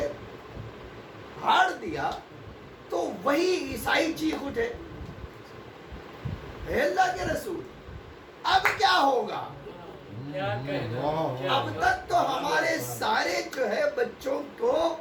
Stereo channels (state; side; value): identical; both; correlation 1.00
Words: پھاڑ دیا تو وہی عیسائی چیخ اٹھے، اے اللہ کے رسول اب کیا ہوگا؟ اب تک تو ہمارے سارے جو ہے بچوں کو